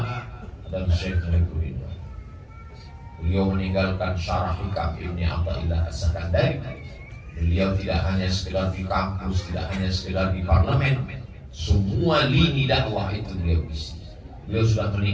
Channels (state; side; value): identical; both; correlation 1.00